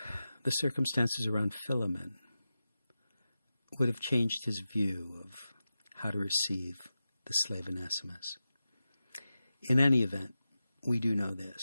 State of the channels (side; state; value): both; inverted; correlation -0.93